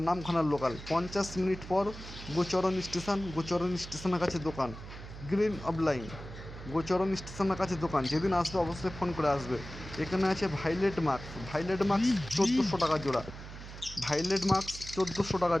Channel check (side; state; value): right; noise; hum, 13 dB below the sound